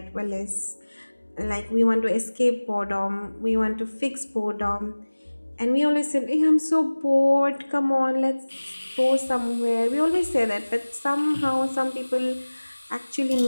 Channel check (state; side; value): inverted; both; correlation -1.00